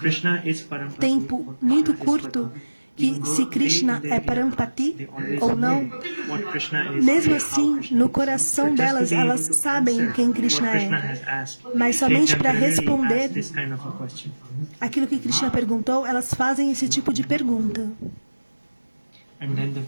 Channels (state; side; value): inverted; both; correlation -1.00